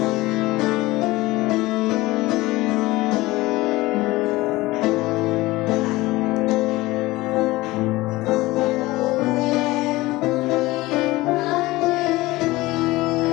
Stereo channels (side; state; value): right; quieter; 19.7 dB